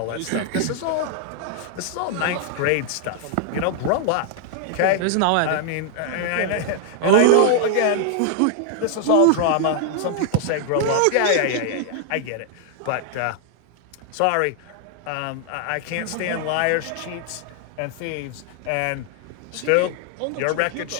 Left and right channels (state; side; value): different; both; correlation 0.00